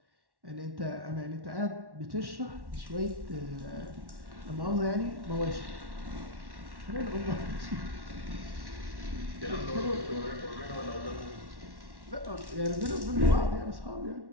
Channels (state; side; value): late; left; 1.1 ms